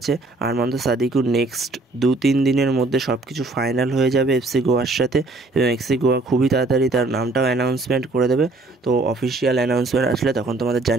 আরমান্দ সাদিকু নেক্সট 2-3 দিনের মধ্যে সব কিছু ফাইনাল হয়ে যাবে এফসি গোয়ার সাথে এবং এফসি গোয়া খুবই তাড়াতাড়ি তার নামটাও অ্যানাউন্সমেন্ট করে দেবে। তো অফিসিয়াল অ্যানাউন্সমেন্ট আসলে তখন তোমাদের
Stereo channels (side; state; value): left; quieter; 3.1 dB